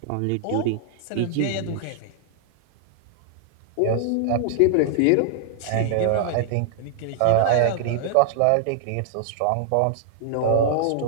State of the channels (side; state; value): both; different; correlation -0.01